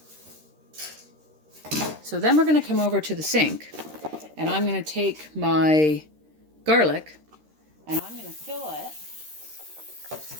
So then we're going to come over to the sink, and I'm going to take my garlic and I'm going to fill it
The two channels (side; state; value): left; late; 13 ms